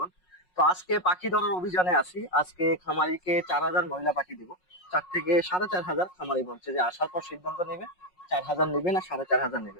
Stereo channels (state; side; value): late; right; 5.5 ms